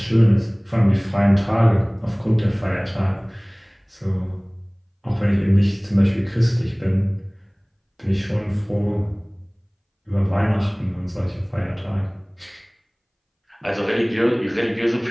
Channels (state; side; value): identical; both; correlation 1.00